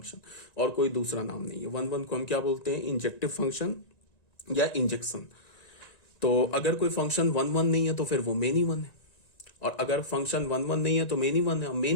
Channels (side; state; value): right; late; 1.9 ms